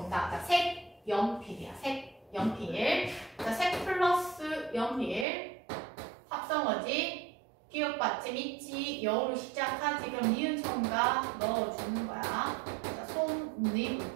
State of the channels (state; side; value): drops out; left; at 5.2 s